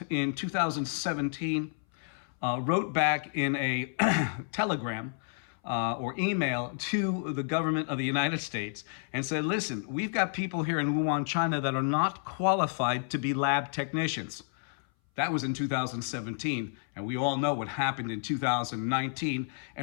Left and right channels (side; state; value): right; silent; 57 dB below the other